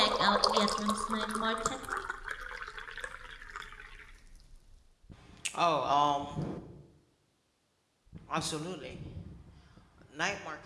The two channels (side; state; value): both; identical; correlation 1.00